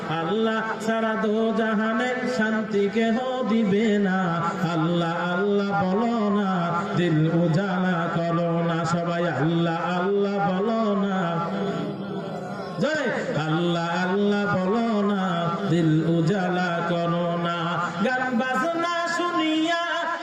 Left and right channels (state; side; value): identical; both; correlation 1.00